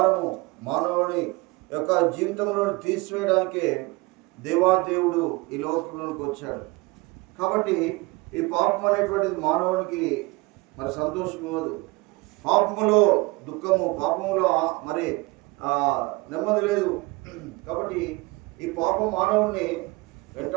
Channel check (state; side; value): quieter; left; 24.2 dB